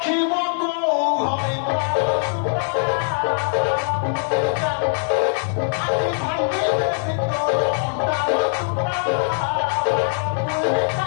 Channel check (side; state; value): right; silent; digital silence